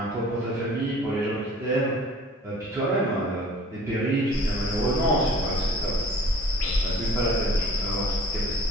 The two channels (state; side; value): normal; both; correlation 0.50